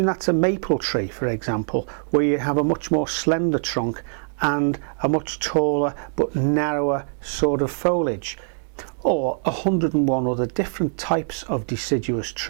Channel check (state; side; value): silent; left; digital silence